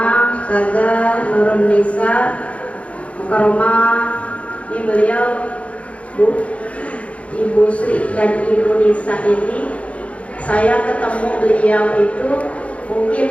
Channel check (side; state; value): right; late; 0.064 ms